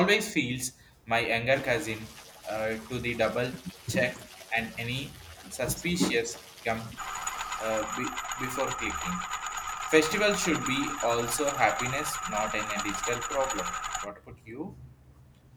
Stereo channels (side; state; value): both; identical; correlation 1.00